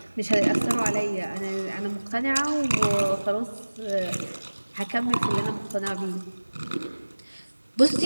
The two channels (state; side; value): inverted; both; correlation -1.00